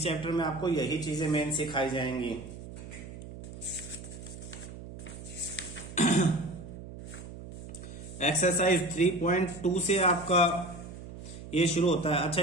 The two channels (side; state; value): right; noise; hum, 12 dB below the sound